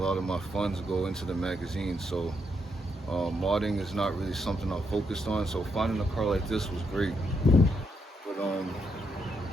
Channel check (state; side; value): normal; both; correlation 0.79